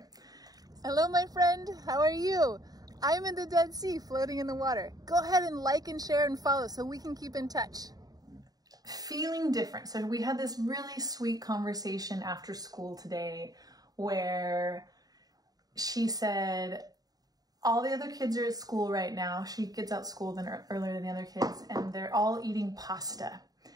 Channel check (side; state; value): left; late; 0.18 ms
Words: Hello, my friend. How are you? I'm in the Dead Sea, floating in the water. Go ahead and like and share and follow so we can keep in touch. Feeling different. So we had this really sweet conversation after school today where she said, all the other kids are at school right now. She gets out school earlier than the other kids, and they're all eating pasta.